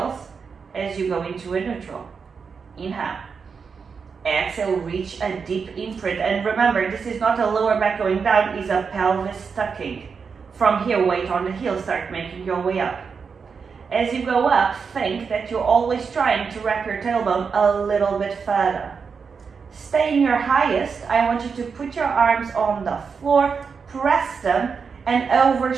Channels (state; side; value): quieter; left; 5.7 dB